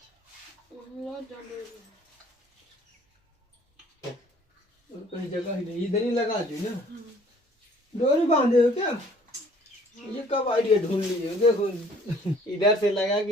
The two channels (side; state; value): both; normal; correlation 0.56